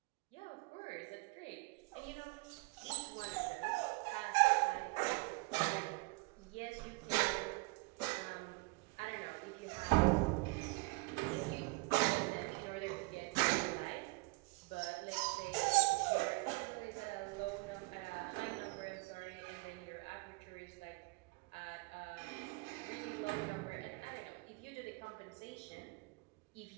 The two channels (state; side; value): quieter; left; 27.8 dB